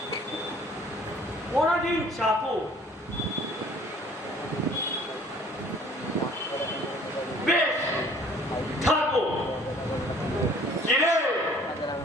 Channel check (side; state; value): both; normal; correlation 0.54